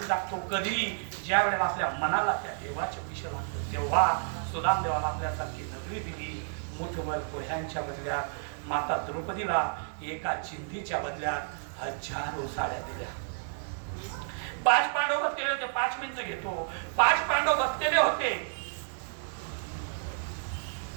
दाखतो. कधी ज्या वेळेला आपल्या मनाला त्या देवाचे विषय म्हणतो, तेव्हा सुदामदेवाला आपल्यासारखी नगरी दिली. मुठभर पोह्यांच्या बदल्यात माता द्रौपदीला एका चिंधीच्या बदल्यात 1000 साड्या दिल्या. 5 पांडव बसलेले होते. 5 मिनिटं घेतो. 5 पांडव बसलेले होते.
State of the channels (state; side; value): silent; left; digital silence